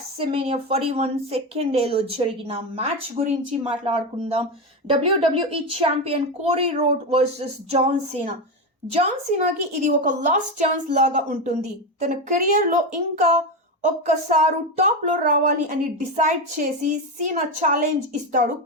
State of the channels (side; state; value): both; normal; correlation 0.14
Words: 41 second డేలో జరిగిన మ్యాచ్ గురించి మాట్లాడుకుందాం. WWE champion Cody Rhodes versus John Cena. జాన్ సీనాకి ఇది ఒక లాస్ట్ ఛాన్స్ లాగా ఉంటుంది. తన కెరియర్లో ఇంకా ఒక్కసారి టాప్లో రావాలి అని డిసైడ్ చేసి సీనా ఛాలెంజ్ ఇస్తాడు